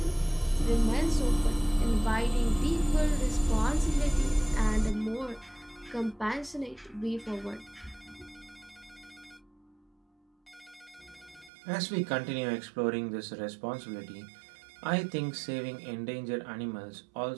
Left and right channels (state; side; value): drops out; left; at 11.5 s